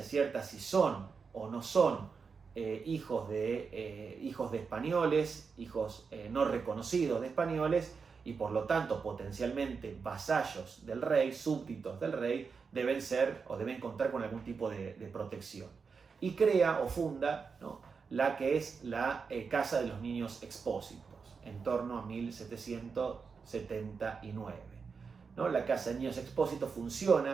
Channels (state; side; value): quieter; left; 5.4 dB